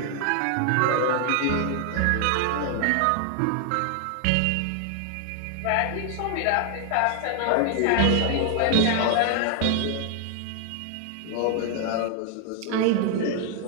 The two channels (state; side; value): different; both; correlation 0.00